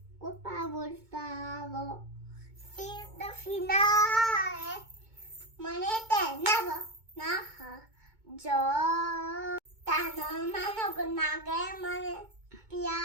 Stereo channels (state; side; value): late; left; 2.2 ms